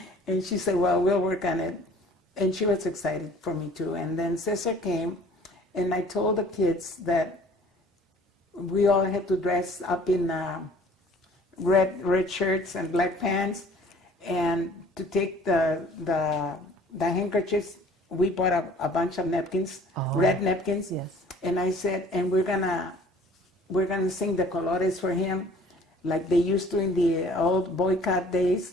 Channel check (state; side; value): normal; both; correlation 0.52